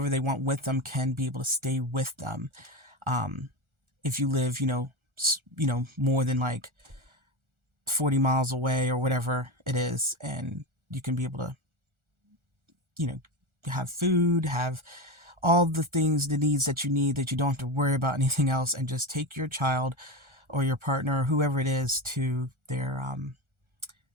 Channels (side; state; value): left; late; 1.4 ms